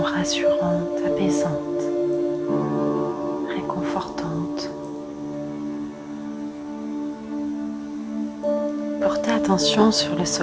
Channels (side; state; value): both; identical; correlation 1.00